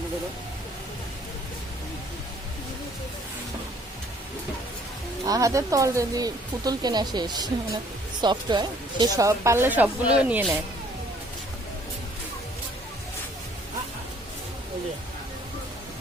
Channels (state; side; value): normal; both; correlation 0.59